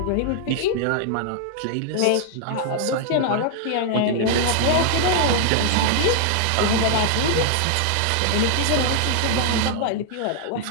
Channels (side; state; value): both; different; correlation 0.00